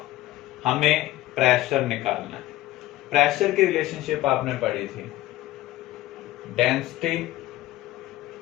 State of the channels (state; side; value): quieter; right; 15.9 dB